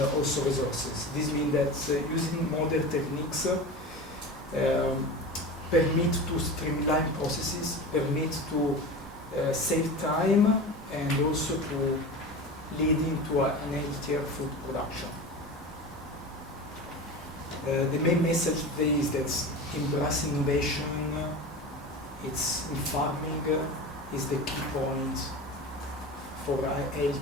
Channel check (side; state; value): both; normal; correlation 0.30